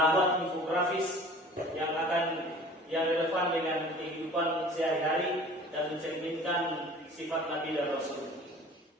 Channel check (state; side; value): normal; both; correlation 0.45